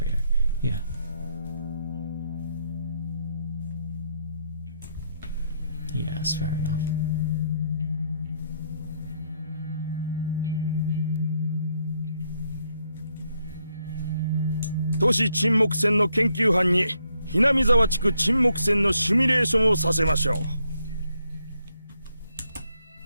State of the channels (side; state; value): both; inverted; correlation -0.76